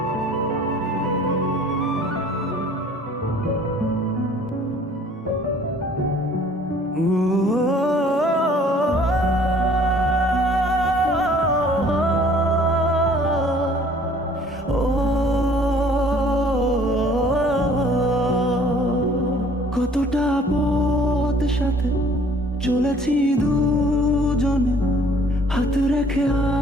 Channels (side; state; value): both; normal; correlation 0.55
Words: সাথে চলেছি দুজনে হাত রেখে